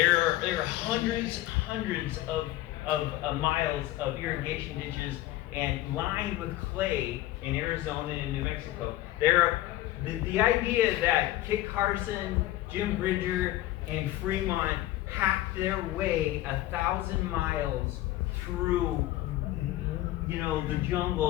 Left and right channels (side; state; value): right; quieter; 15.7 dB